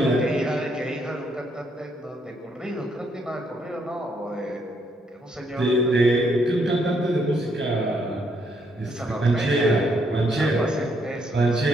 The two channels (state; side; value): normal; both; correlation 0.73